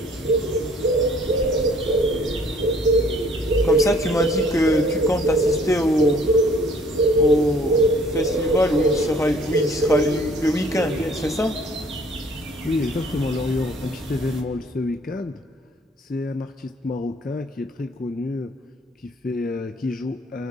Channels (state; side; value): normal; both; correlation 0.57